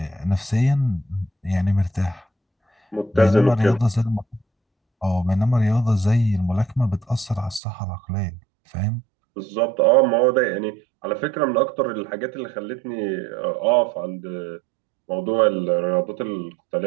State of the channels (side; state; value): left; drops out; at 7.6 s